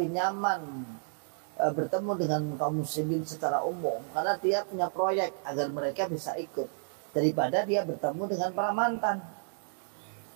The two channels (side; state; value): left; silent; digital silence